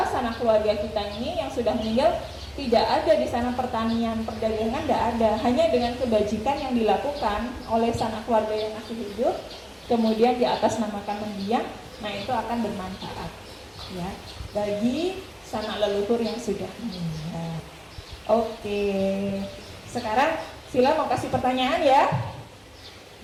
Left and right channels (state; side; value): identical; both; correlation 1.00